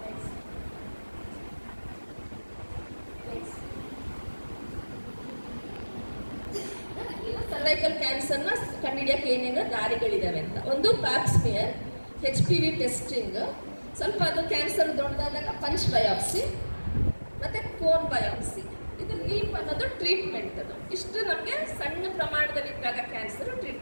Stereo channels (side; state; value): both; inverted; correlation -1.00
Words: ಸರ್ವೈಕಲ್ ಕ್ಯಾನ್ಸರ್ನ ಕಂಡುಹಿಡಿಯಕ್ಕೆ ಏನೇನು ದಾರಿಗಳಿದಾವೆ ಅಂತ. ಒಂದು ಪ್ಯಾಪ್ಸ್ಮಿಯರ್, HPV ಟೆಸ್ಟಿಂಗ್, ಸ್ವಲ್ಪ ಅದು ಕ್ಯಾನ್ಸರ್ ದೊಡ್ಡದಾದಾಗ ಪಂಚ್ ಬಯಾಪ್ಸಿ ಮತ್ತು ಕೋನ್ ಬಯಾಪ್ಸಿ. ಇದು ಲೀಪ್ ಅನ್ನೋದು ಟ್ರೀಟ್ಮೆಂಟ್. ಅದು ಇಷ್ಟು ನಮಗೆ ಸಣ್ಣ ಪ್ರಮಾಣದಲ್ಲಿದ್ದಾಗ ಕ್ಯಾನ್ಸರ್